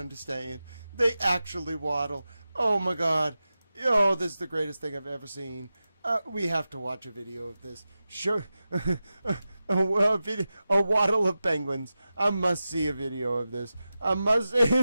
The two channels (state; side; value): inverted; both; correlation -0.93